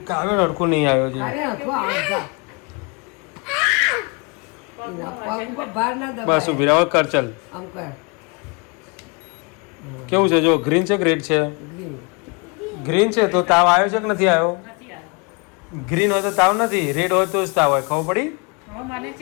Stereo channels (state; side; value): quieter; right; 31.6 dB